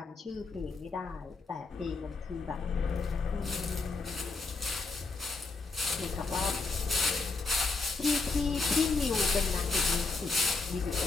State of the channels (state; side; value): quieter; right; 3.9 dB